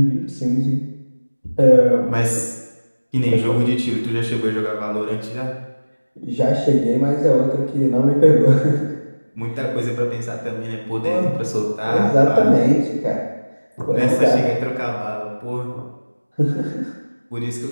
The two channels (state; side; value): inverted; both; correlation -1.00